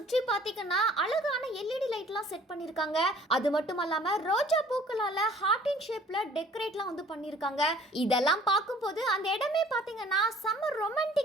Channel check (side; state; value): both; normal; correlation 0.53